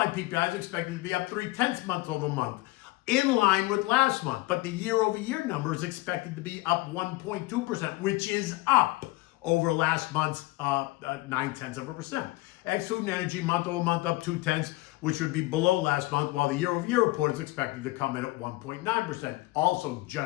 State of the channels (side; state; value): right; quieter; 20.3 dB